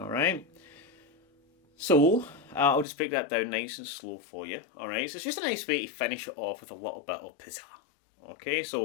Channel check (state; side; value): drops out; right; at 2.9 s